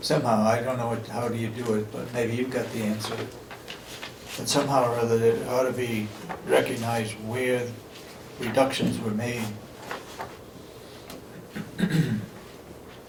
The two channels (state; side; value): identical; both; correlation 1.00